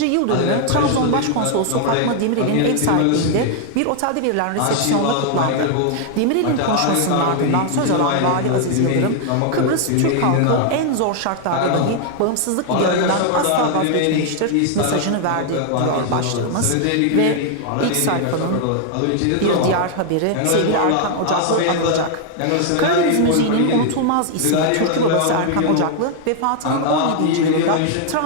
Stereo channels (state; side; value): different; both; correlation 0.00